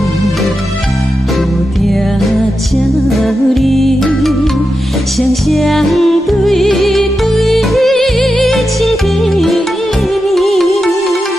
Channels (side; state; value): both; normal; correlation 0.89